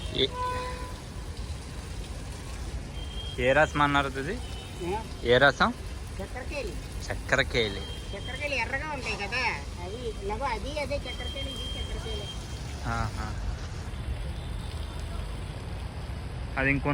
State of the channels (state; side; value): identical; both; correlation 1.00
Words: ఏ రసం అన్నారు ఇది? ఏ రసం? చక్కెరకేళి. చక్కెరకేళి ఎర్రగా ఉంటాయి కదా, అది అది అదే చక్కెరకేళి, ఇది చక్కెరకేళి. అది